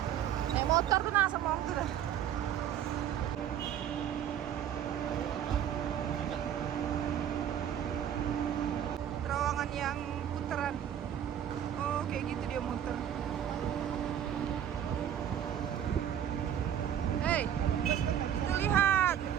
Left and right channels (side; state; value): left; quieter; 10.0 dB